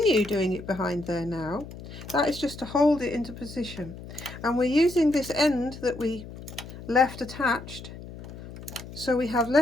doing it behind there now. That is just to hold it into position. And we're using this end that we left attached, so we have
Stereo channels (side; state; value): left; noise; hum, 14 dB below the sound